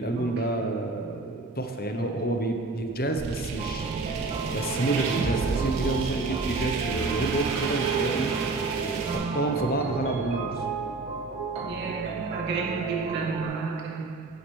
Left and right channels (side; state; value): left; quieter; 3.4 dB